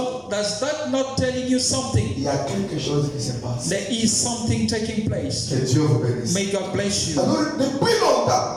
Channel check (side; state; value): both; identical; correlation 1.00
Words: Does that not telling you something? Il y a quelque chose qui se passe. There is something taking place. Que Dieu vous bénisse. May God bless you. Alors, depuis longtemps,